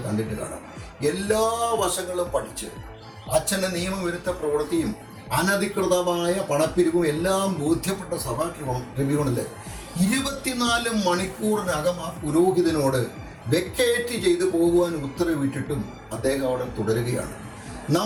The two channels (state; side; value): identical; both; correlation 1.00